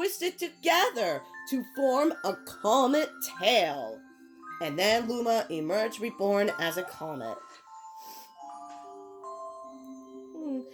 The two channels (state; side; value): identical; both; correlation 1.00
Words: together to form a comet tail. And then Luma emerged reborn as a comet.